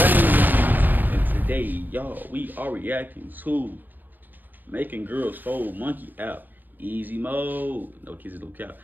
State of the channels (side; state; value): left; late; 0.087 ms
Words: And today, y'all, we are reacting to Making Girls Fold Monkey Out Easy Mode. No kisses, no cap.